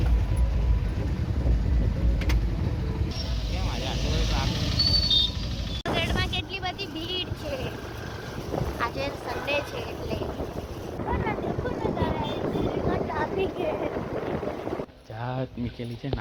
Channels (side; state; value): both; identical; correlation 1.00